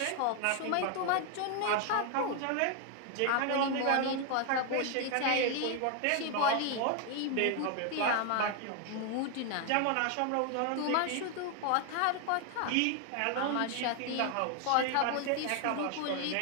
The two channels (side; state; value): both; different; correlation 0.00